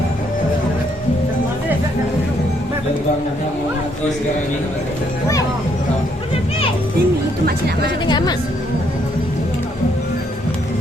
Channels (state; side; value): normal; both; correlation 0.71